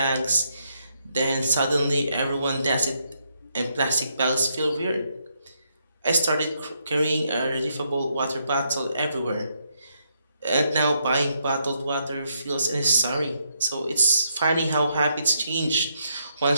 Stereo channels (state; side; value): inverted; both; correlation -0.76